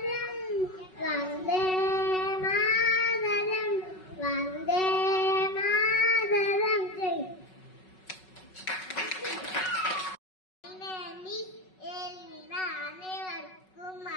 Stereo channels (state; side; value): late; right; 5.4 ms